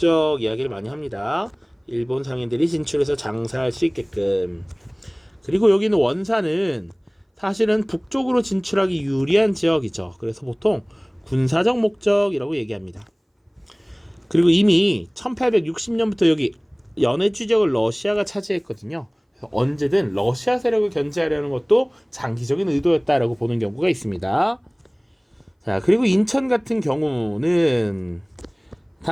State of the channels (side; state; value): both; identical; correlation 1.00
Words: 이야기를 많이 합니다. 일본 상인들이 진출해서 장사할 수 있게끔. 그리고 여기는 원산은 사실은 북쪽으로 진출하기 유리한 지역이죠. 그래서 보통 군사적 목적이라고 얘기합니다. 그리고 이미 1860년부터 여기 연해주 지역을 러시아가 차지했거든요. 그래서 언제든 러시아 세력을 견제하려는 것도 장기적인 의도였다라고 보는 경우가 있습니다. 자, 그리고 인천 같은 경우는